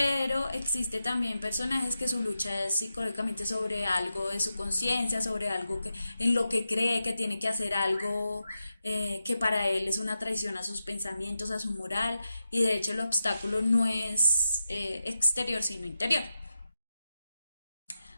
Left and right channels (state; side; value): inverted; both; correlation -0.90